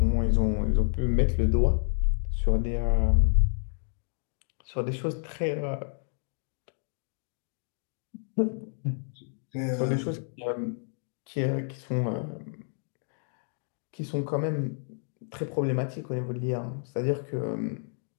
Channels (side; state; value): right; silent; digital silence